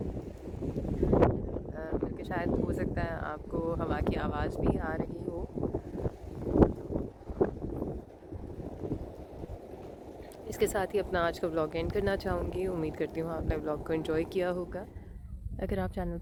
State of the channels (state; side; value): identical; both; correlation 1.00